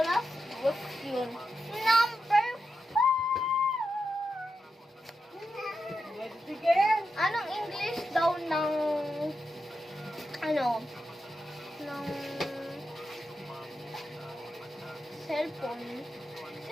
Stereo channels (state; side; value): normal; both; correlation 0.88